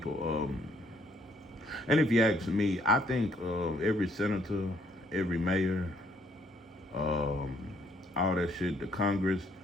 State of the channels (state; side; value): normal; both; correlation 0.66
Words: And if you ask me, I think every senator, every mayor, all that shit, the Congress,